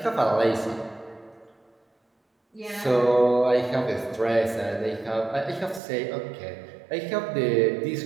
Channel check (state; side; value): drops out; left; at 5.8 s